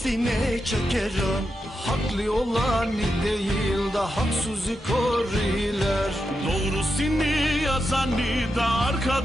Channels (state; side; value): normal; both; correlation 0.87